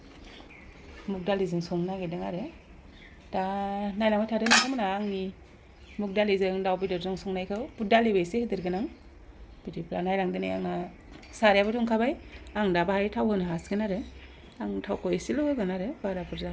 मुग दालिजों संनो नागिरदों आरो दा नायलांबाय थादो नोंथांमोना आंनि मुग दालिजों दाउ बेदरजों संनायखौ बुट दालिबो एसे होदेरगोन आं बिदिब्ला नायलांदो नै आंना सारायाबो दुंखाबाय आं दा बाहाय थाव होनो हासिगोन आरो आं थावखौ एसेल' होगोन आरो बारा बुरजा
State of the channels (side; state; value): both; identical; correlation 1.00